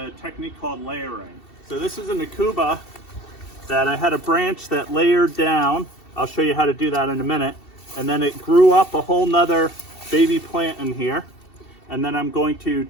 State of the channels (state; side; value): late; right; 2.7 ms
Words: technique called layering. So this is an Akuba that I had a branch that layered down. I'll show you how to do that in a minute. And then it grew up a whole nother baby plant in here. And then I'm going to